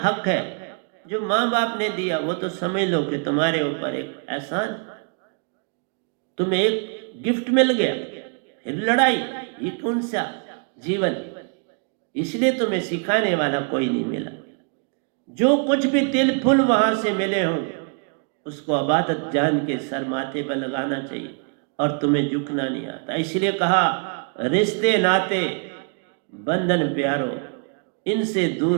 है। जो माँ बाप ने दिया वो तो समझ लो कि तुम्हारे ऊपर एक एहसान, तुम्हें एक गिफ्ट मिल गया, फिर लड़ाई, ये कौन सा जीवन। इसलिए तुम्हें सिखाने वाला कोई नहीं मिला। जो कुछ भी तिल फुल वहां से मिले हो उसको अबादत जान के सर माथे पर लगाना चाहिए, और तुम्हें झुकना नहीं आता। इसलिए कहा रिश्ते नाते बंधन प्यारो, इनसे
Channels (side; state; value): left; quieter; 40.0 dB